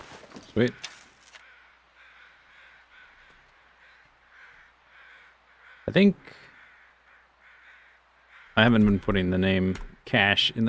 Sweet. I think I haven't been putting the name cache in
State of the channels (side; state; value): both; identical; correlation 1.00